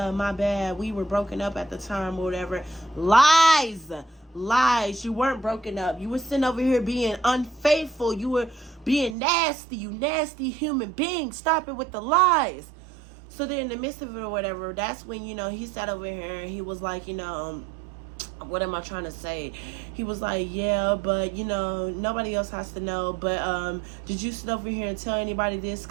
my bad, we were broken up at the time or whatever. Lies. You weren't broken up. You were sitting over here being unfaithful. You were being nasty. You nasty human being. Stop it with the lies. So then in the midst of it or whatever, that's when, you know, he sat over here and he was like, you know, what am I trying to say? He was like, yeah, but, you know, nobody else has to know. But did you sit over here and tell anybody this?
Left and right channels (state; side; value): drops out; left; at 9.2 s